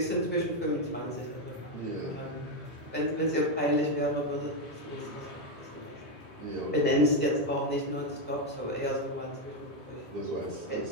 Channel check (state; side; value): normal; both; correlation 0.06